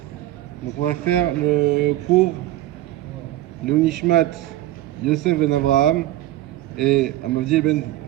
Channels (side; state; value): left; quieter; 14.7 dB